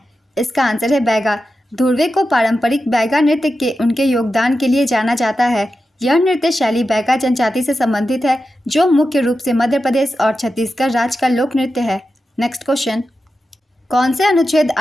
इसका आंसर है बैगा। धुर्वे को पारंपरिक बैगा नृत्य के उनके योगदान के लिए जाना जाता है। यह नृत्य शैली बैगा जनजाति से संबंधित है जो मुख्य रूप से मध्य प्रदेश और छत्तीसगढ़ राज्य का लोक नृत्य है। नेक्स्ट क्वेश्चन, कौन से अनुच्छेद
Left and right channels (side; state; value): both; normal; correlation 0.91